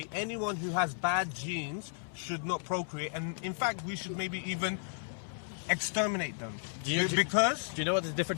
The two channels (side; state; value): right; silent; 55 dB below the other